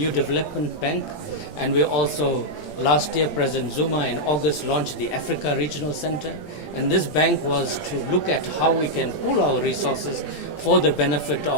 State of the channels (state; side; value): late; right; 17 ms